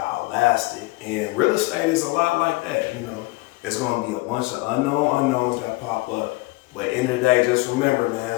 outlast it. And real estate is a lot like that, you know. It's gonna be a bunch of unknowns that pop up. But at the end of the day, just remember, man,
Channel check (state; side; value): quieter; right; 23.2 dB